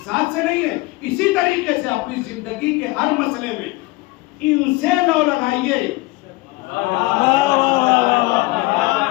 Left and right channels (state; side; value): quieter; right; 21.8 dB